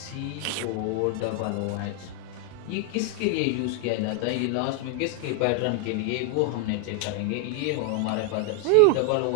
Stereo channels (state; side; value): different; both; correlation 0.00